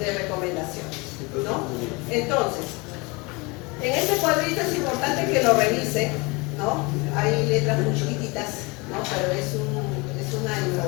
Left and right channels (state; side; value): quieter; right; 26.8 dB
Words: recomendaciones, ¿no? Entonces, en este cuadrito es importante que lo revisen, ¿no? Hay letras muy chiquititas, ¿no?, pero es una